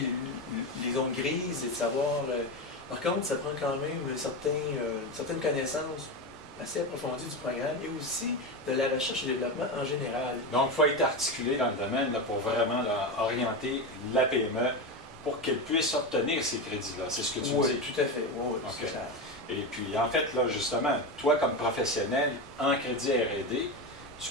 les zones grises et de savoir... Par contre, ça prend quand même une certaine connaissance assez approfondie du programme et aussi de la recherche et développement en général. Donc, il faut être articulé dans le domaine là, pour vraiment là, orienter la PME pour qu'elle puisse obtenir ces crédits-là. C'est ce que tu dis? Oui, tout à fait. Oui, okay. C'est clair. Et puis, en fait, là, justement, toi, comme professionnel en crédit R&D, tu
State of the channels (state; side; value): normal; both; correlation 0.17